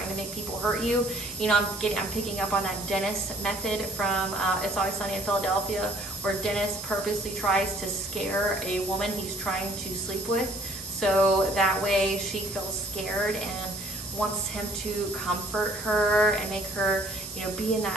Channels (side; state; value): right; noise; hiss, 10 dB below the sound